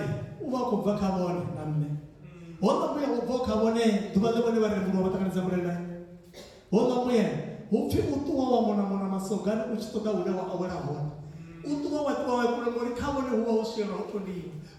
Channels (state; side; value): identical; both; correlation 1.00